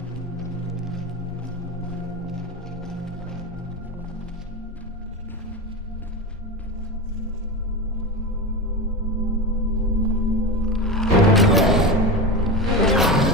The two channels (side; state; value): both; normal; correlation 0.21